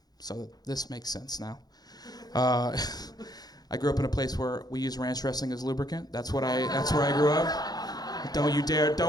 so this makes sense now. I grew up in a place where we use ranch dressing as lubricant. That's where I grew up. Don't you dare,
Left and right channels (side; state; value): right; late; 0.19 ms